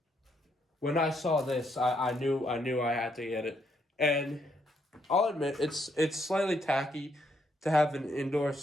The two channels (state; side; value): normal; both; correlation 0.74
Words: when I saw this, I knew I had to get it. And I'll admit it's slightly tacky to have an indoor